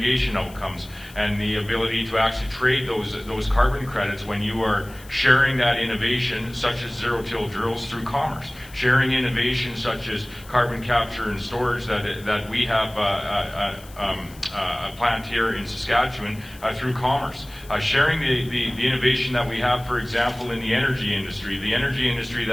outcomes. and the ability to actually trade those carbon credits when you are sharing that innovation, such as zero-till drills, through commerce. Sharing innovation such as carbon capture and storage that we have a plant here in Saskatchewan through commerce. Sharing the innovation that we have, for example, in the energy industry. The energy industry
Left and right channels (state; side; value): noise; left; hiss, 21 dB below the sound